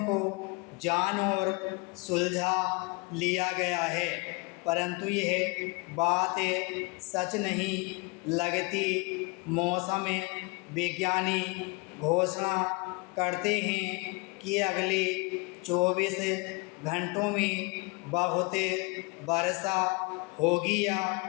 को जान और सुलझा लिया गया है, परंतु यह बात सच नहीं लगती। मौसम विज्ञानी घोषणा करते हैं कि अगले 24 घंटों में बहुत वर्षा होगी या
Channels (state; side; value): quieter; right; 28.8 dB